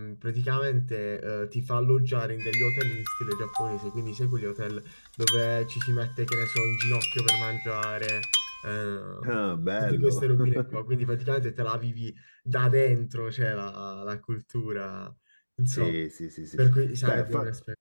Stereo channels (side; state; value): both; inverted; correlation -1.00